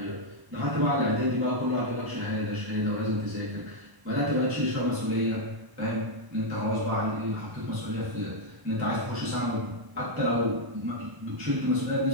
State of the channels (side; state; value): left; late; 1.0 ms